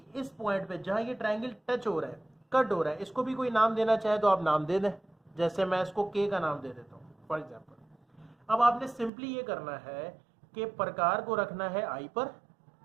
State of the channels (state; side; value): drops out; left; at 9.1 s